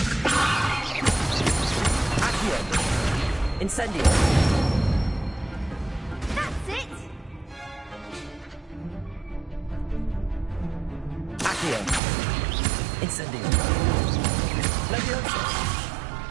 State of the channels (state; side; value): drops out; left; at 12.0 s